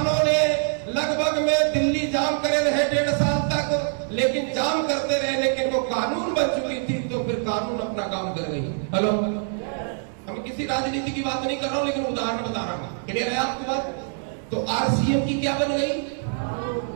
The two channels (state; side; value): silent; left; 59 dB below the other